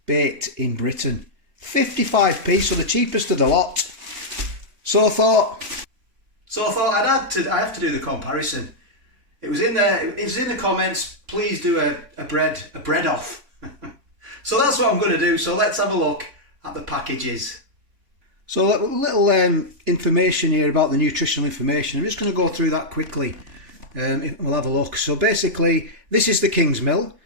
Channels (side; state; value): left; late; 3.5 ms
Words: baked in Britain. 55p, so the cheapest of the lot. So I thought I have to do the comparison. It was in the comments. Please do a bread off. So that's what I'm going to do. So let's have a look at the packages. So a little information here about the nutritional information. I'm just going to go through that quickly. We'll have a look. So basically, this is the KINGSMILL,